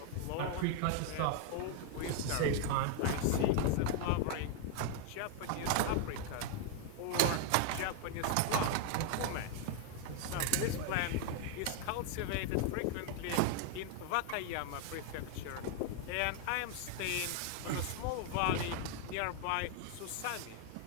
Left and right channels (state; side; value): different; both; correlation 0.00